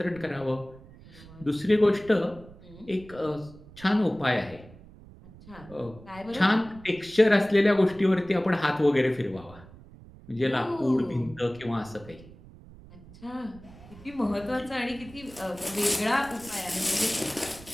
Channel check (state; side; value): noise; right; rumble, 20 dB below the sound